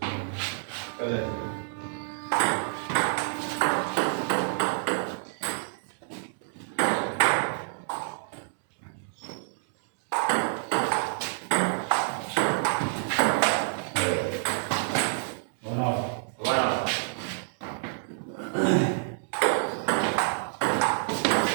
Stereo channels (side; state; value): left; silent; digital silence